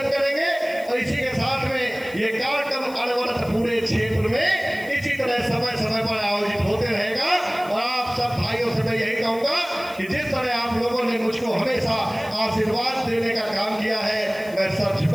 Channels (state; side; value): noise; left; hiss, 21 dB below the sound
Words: करेंगे और इसी के साथ में ये कार्यक्रम अनवरत पूरे क्षेत्र में इसी तरह समय समय पर आयोजित होते रहेगा। और आप सब भाइयों से मैं यही कहूंगा कि जिस तरह आप लोगों ने मुझको हमेशा आशीर्वाद देने का काम किया है, मैं सर